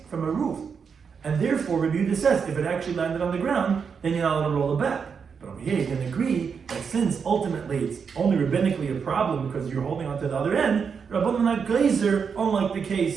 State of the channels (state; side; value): quieter; left; 6.2 dB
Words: from a roof. And therefore, Rabbi Yehuda says, if it actually landed on the ground, then you're not allowed to roll it back. But over here, you can agree that since ultimately it's only rabbinically a problem because you're holding on to the other end, Rabbanan not glazer, unlike the